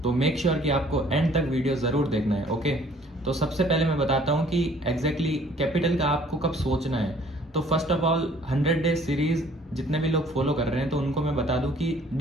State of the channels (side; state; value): both; normal; correlation 0.56